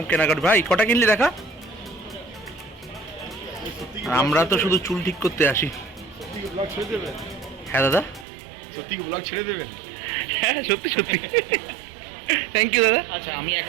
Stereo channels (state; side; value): drops out; left; at 8.2 s